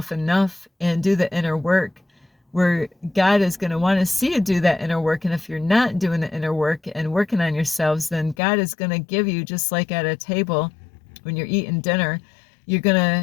enough and do the inner work, where God is going to want to see you do that inner work. And if you're not doing the inner work and working on yourselves, then God is going to give you, just like at a table when you're eating dinner, you're going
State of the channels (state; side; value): drops out; right; at 8.3 s